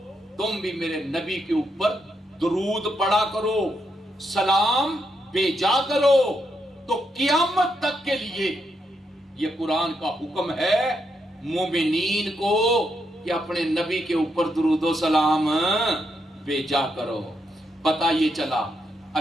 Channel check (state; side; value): normal; both; correlation 0.80